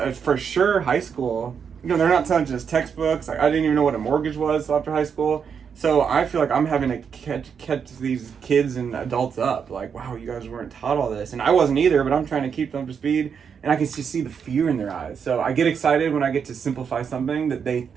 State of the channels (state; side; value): quieter; left; 6.8 dB